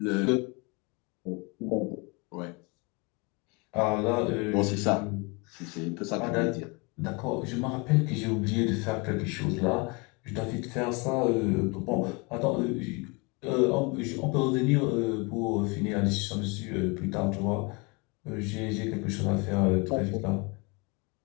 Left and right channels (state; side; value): quieter; right; 29.3 dB